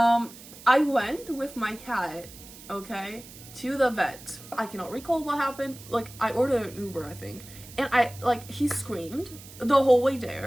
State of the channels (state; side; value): noise; right; hiss, 18 dB below the sound